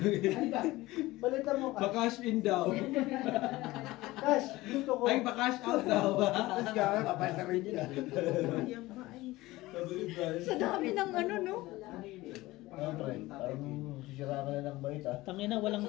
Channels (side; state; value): right; quieter; 18.9 dB